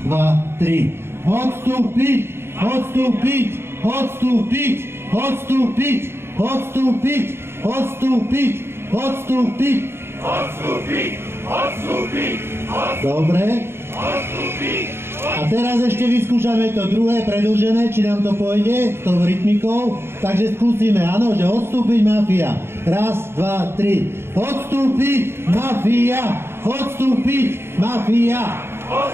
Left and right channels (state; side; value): late; left; 0.12 ms